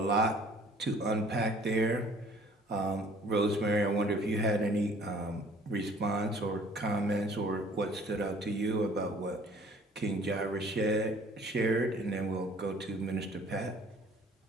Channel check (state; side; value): normal; both; correlation 0.54